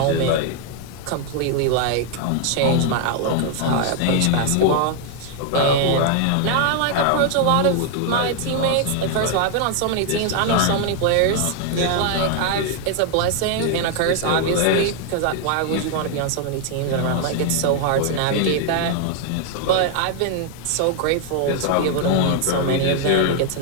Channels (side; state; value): both; different; correlation 0.00